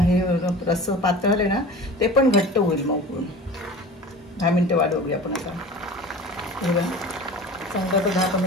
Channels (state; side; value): normal; both; correlation 0.38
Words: रस्स पातळ झाले ना ते पण घट्ट होईल. मग उकळून 10 मिनिटं वाढवली आपण. आता हे बघा चांगलं आता